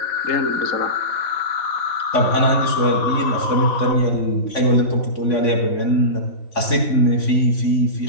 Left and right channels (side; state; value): right; late; 3.5 ms